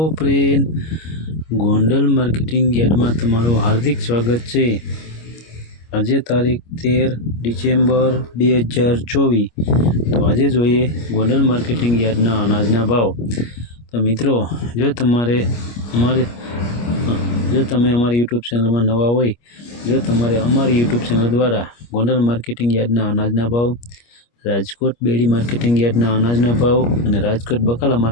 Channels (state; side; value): late; right; 25 ms